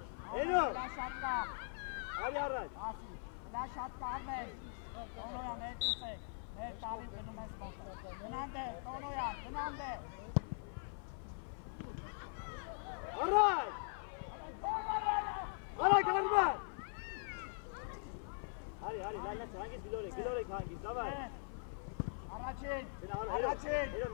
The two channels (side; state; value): right; silent; 50 dB below the other